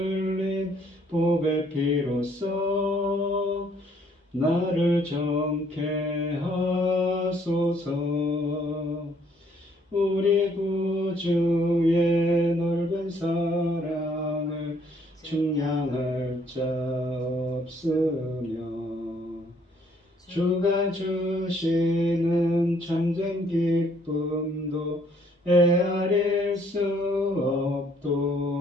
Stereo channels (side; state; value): both; normal; correlation 0.65